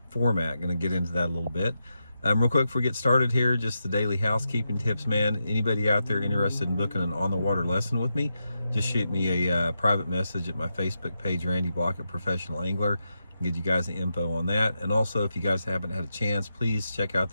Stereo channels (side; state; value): both; inverted; correlation -0.87